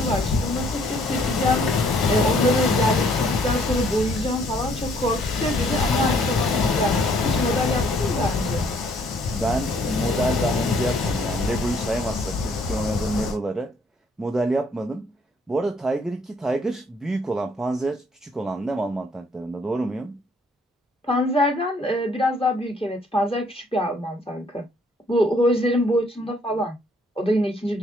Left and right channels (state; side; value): normal; both; correlation 0.64